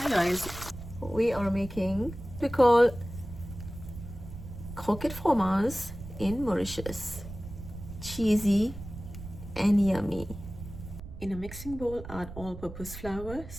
guys, we are making we call Croquet Fromage in Mauritius. Cheesy and yummy. In a mixing bowl, add all-purpose flour,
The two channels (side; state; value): right; noise; rumble, 12 dB below the sound